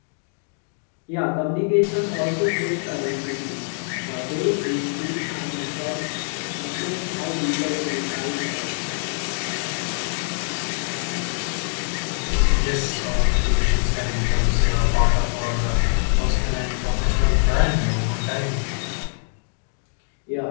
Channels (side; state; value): right; silent; 63 dB below the other